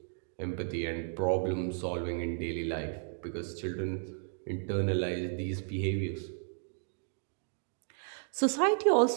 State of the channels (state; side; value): silent; left; 55 dB below the other